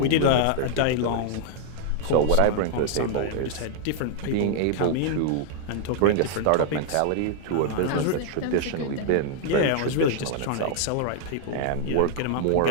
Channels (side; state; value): both; different; correlation 0.00